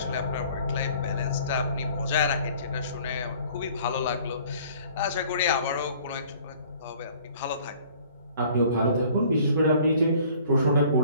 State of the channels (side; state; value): both; inverted; correlation -0.53